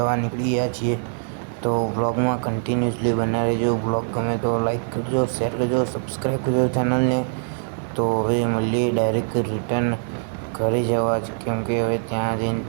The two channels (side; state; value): left; silent; 55 dB below the other